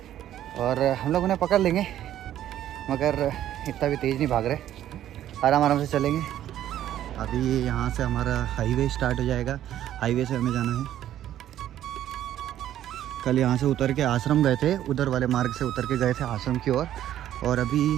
और हम लोग उन्हें पकड़ लेंगे, मगर इतना भी तेज़ नहीं भाग रहे, आराम आराम से चलेंगे। अभी यहाँ से हमारा हाईवे स्टार्ट हो जाएगा। हाईवे से हमें जाना है। कल यहाँ से उतर के आश्रम गए थे, उधर वाले मार्ग से उतर के गए थे आश्रम की ओर, और अभी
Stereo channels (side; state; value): left; quieter; 11.9 dB